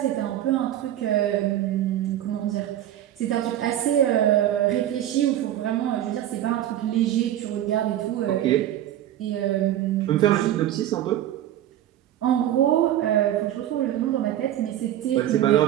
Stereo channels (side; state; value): left; quieter; 12.2 dB